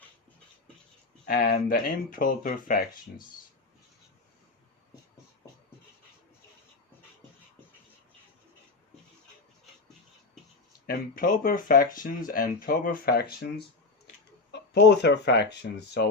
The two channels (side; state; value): right; quieter; 3.7 dB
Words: and the improper fractions. Improper fractions and proper fractions, both are fractions. So